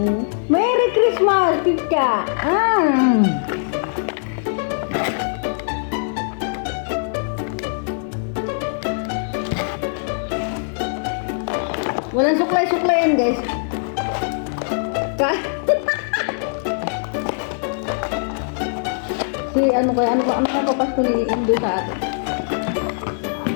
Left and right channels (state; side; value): silent; right; digital silence